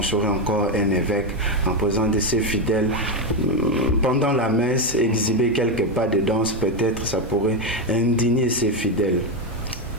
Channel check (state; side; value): normal; both; correlation 0.08